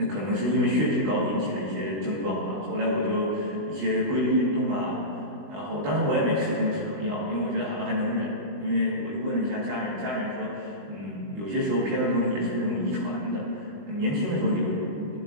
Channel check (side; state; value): left; late; 20 ms